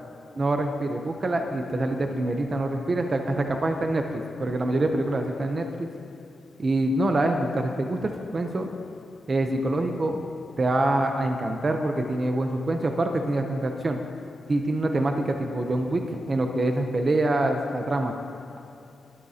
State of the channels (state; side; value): normal; both; correlation 0.90